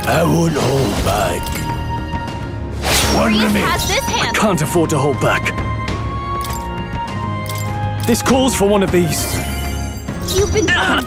I won't hold back. One Reese remains. has this hand. Can't afford to hold back. This calls for one of these. You've been burned.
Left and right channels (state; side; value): identical; both; correlation 1.00